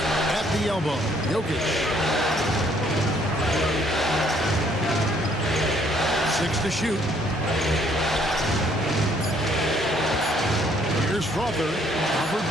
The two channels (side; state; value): both; normal; correlation 0.65